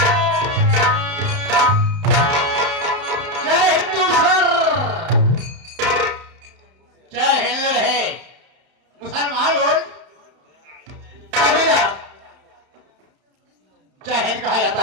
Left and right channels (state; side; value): late; left; 31 ms